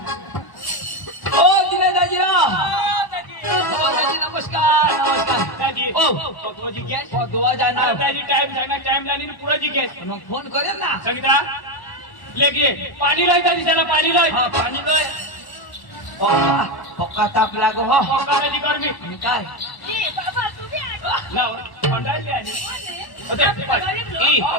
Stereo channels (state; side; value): late; right; 1.0 ms